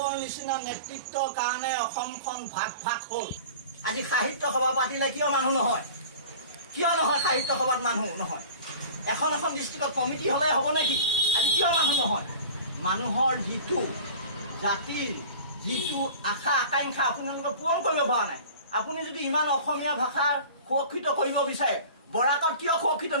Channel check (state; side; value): inverted; both; correlation -0.40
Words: নিচিনা নেতৃত্বৰ কাৰণে অসমখন ভাগ ভাগ হ'ল। আজি সাহিত্য সভা পাতিলে কিয় মানুহ নহয়? কিয় নহয় সাহিত্য সভাত মানুহ নহয়? এখন এখন ডিষ্ট্ৰিক্টত কমিটি হ'লে হ'ব নেকি? আজি কিয় মানুহ নহয়? মানুহৰ যিটো জাতিৰ যিটো আশা আকাংক্ষা আপোনালোকে পূৰণ কৰিব পৰা নাই। আপুনি যদি ইমান অসমীয়া ভাষা সুৰক্ষিত কৰিব বিচাৰে, বৰাকত কিয় সুৰক্ষিত